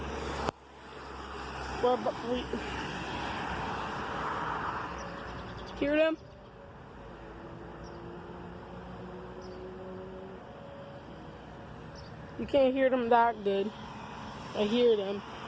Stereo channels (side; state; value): both; identical; correlation 1.00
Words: Hear them? You can't hear them that good. I hear them.